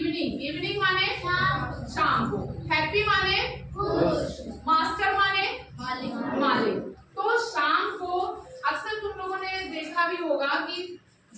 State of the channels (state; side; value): identical; both; correlation 1.00